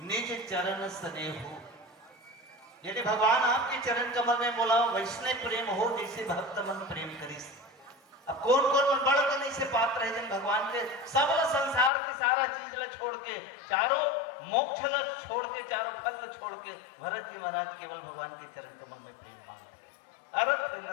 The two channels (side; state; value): right; drops out; at 11.9 s